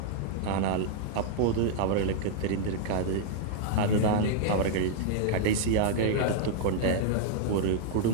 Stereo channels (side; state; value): both; different; correlation -0.01